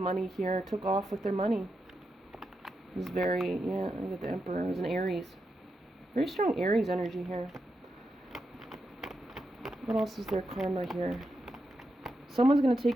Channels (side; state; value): both; normal; correlation 0.86